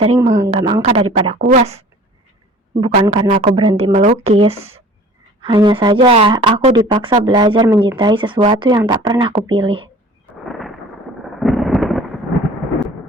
menggenggam angka daripada kuas. Bukan karena aku berhenti melukis. Hanya saja aku dipaksa belajar mencintai sesuatu yang tak pernah kupilih.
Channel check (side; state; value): both; normal; correlation 0.46